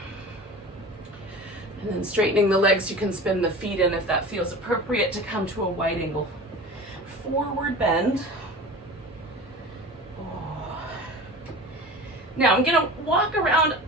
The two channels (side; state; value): both; normal; correlation 0.35